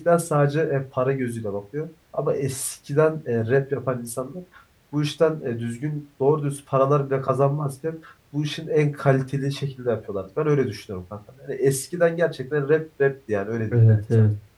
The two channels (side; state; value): both; identical; correlation 1.00